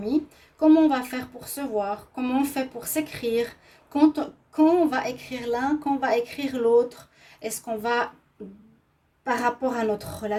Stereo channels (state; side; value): identical; both; correlation 1.00